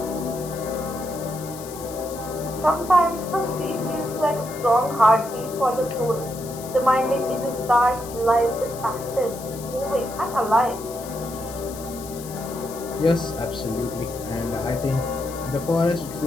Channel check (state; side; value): noise; left; hiss, 14 dB below the sound